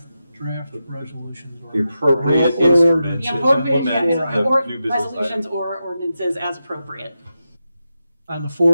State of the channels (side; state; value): both; inverted; correlation -0.89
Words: draft resolutions or. The appropriate or instrument ordinances The to appropriate, implement or the new business resolutions item. or ordinances as appropriate. On the